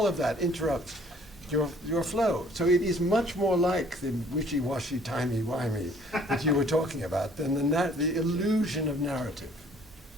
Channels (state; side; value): normal; both; correlation 0.57